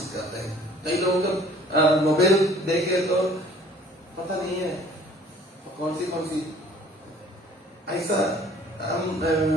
करते हैं। कई लोगों का मोबाइल देखे तो पता नहीं है कौन सी ऐसा, हम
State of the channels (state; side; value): normal; both; correlation 0.53